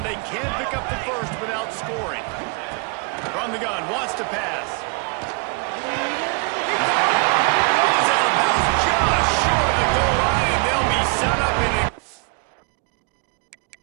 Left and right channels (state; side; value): quieter; left; 33.0 dB